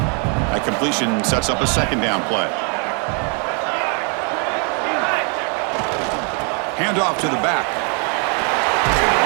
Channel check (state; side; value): quieter; left; 37.8 dB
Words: That completion sets up a 2nd down play. Handoff to the back.